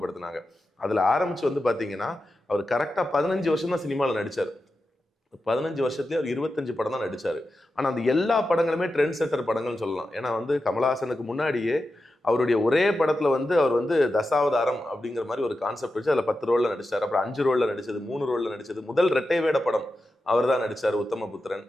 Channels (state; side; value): normal; both; correlation 0.90